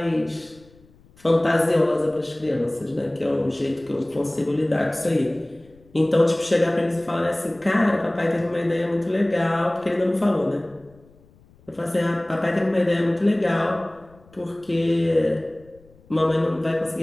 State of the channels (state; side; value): noise; left; rumble, 28 dB below the sound